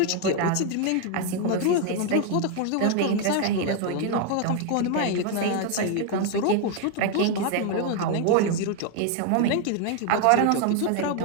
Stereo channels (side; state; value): both; different; correlation 0.01